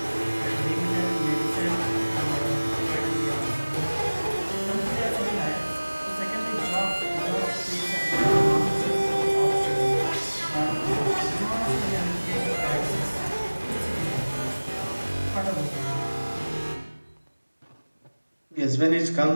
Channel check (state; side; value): inverted; both; correlation -1.00